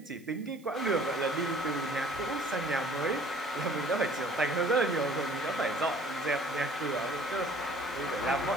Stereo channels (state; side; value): noise; right; hiss, 27 dB below the sound